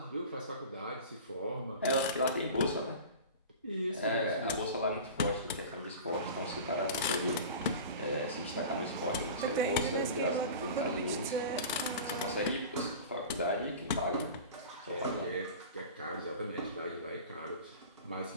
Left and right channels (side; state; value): both; inverted; correlation -0.36